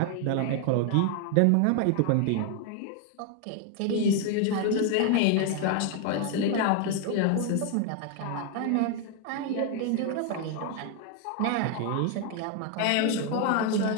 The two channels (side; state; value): both; different; correlation 0.00